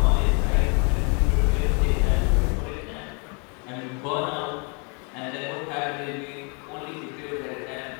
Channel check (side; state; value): right; quieter; 35.3 dB